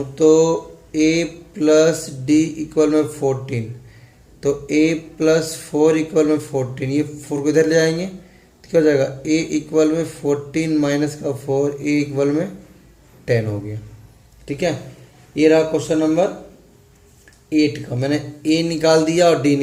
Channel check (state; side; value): identical; both; correlation 1.00